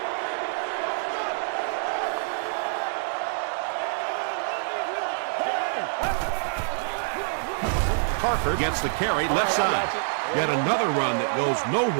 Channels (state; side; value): silent; left; 60 dB below the other